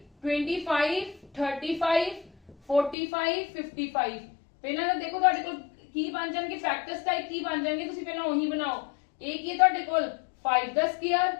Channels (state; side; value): drops out; right; at 3.0 s